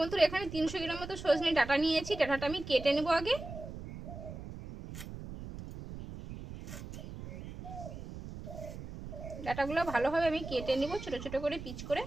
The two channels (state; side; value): noise; right; rumble, 11 dB below the sound